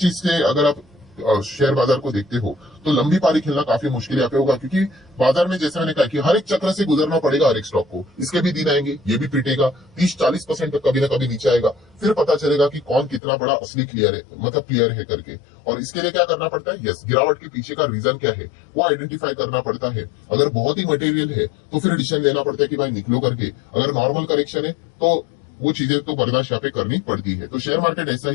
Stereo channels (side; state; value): right; drops out; at 13.2 s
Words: से अगर आप शेयर बाजार को देखते हो तो लंबी पारी खेलना काफी मुश्किल यहाँ पे होगा, क्योंकि बाजार में जैसे मैंने कहा कि हर एक चक्र से गुजरना पड़ेगा हर एक स्टॉक को, इसके भी दिन आएंगे, ये भी पिटेगा, 30-40% तक कभी ना कभी नीचे आएगा, फिर पता चलेगा कि कौन कितना बड़ा असली क्लियर है, मतलब क्लियर है करके। और इसके लिए क्या करना पड़ता है, यस, गिरावट के पीछे का रीजन क्या है वो आइडेंटिफाई करना पड़ता है। अगर बहुत ही मटेरियल है तो फिर डिसीजन लेना पड़ता है कि भाई निकलो करके, अगर नॉर्मल करेक्शन है तो वो चीजें तो बर्दाश्त यहाँ पे करनी पड़ती है। तो शेयर मार्केट ऐसा